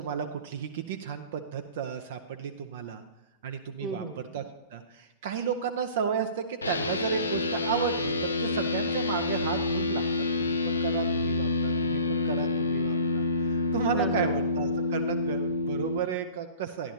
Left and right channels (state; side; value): inverted; both; correlation -0.45